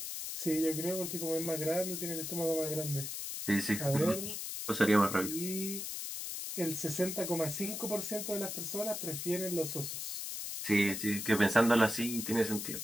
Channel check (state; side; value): noise; left; hiss, 5 dB below the sound